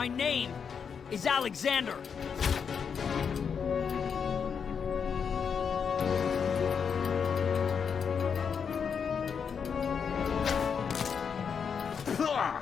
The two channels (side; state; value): right; quieter; 6.6 dB